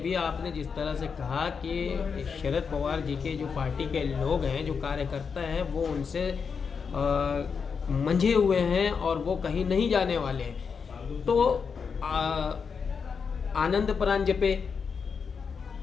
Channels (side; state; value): right; quieter; 5.9 dB